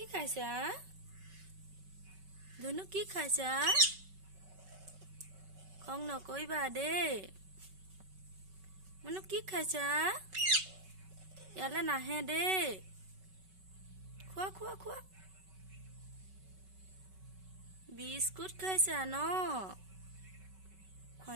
খাইছা ধুনু কি খাইছা খং নকইবা দেই menu কি খাইছা ইয়ালে নাহে দেই খোৱা খোৱা খোৱা বিস্কুট খাইছা ন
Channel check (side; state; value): left; late; 5.3 ms